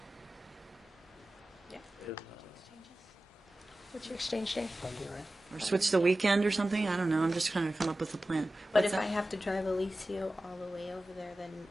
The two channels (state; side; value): normal; both; correlation 0.95